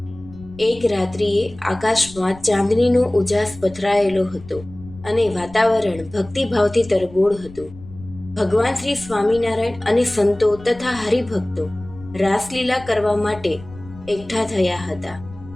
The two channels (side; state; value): left; noise; rumble, 18 dB below the sound